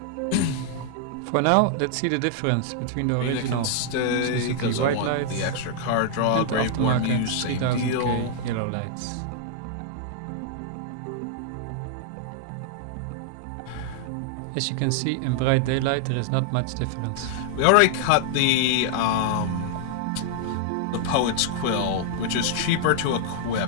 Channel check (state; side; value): different; both; correlation -0.01